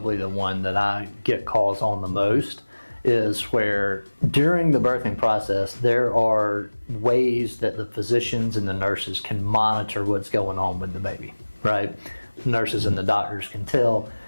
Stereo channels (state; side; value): inverted; both; correlation -1.00